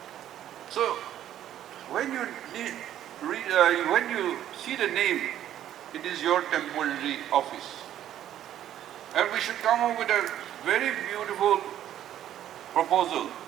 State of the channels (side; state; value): left; quieter; 11.5 dB